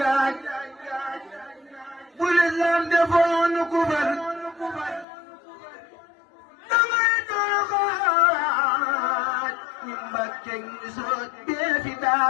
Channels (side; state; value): right; drops out; at 5.1 s